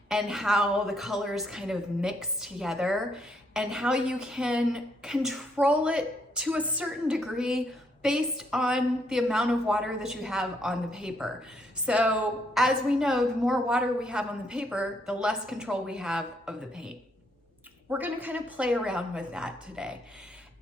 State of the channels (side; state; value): both; normal; correlation 0.73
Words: and how the colors kind of mix together, and how you can control it to a certain degree based on the amount of water that you have on the paper. So as we know, the more water we have on the paper, the less control we have of the paint. We're gonna kind of play around with that today.